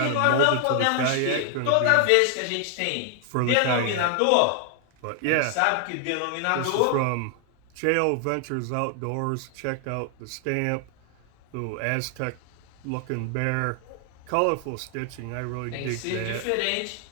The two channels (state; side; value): different; both; correlation 0.00